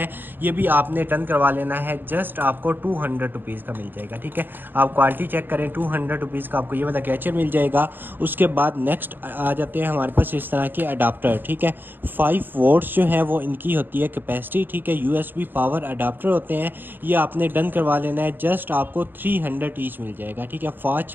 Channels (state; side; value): late; left; 0.091 ms